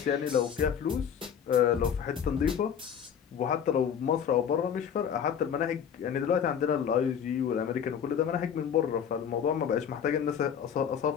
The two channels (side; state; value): right; quieter; 8.1 dB